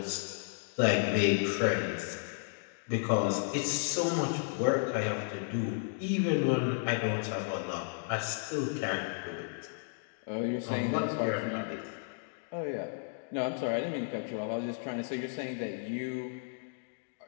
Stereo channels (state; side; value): silent; right; digital silence